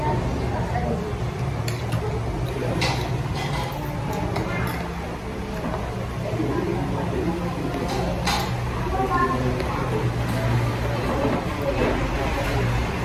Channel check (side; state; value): both; identical; correlation 1.00